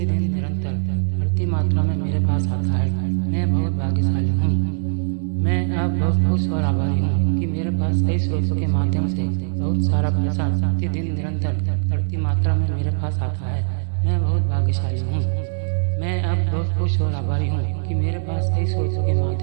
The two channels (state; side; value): silent; left; digital silence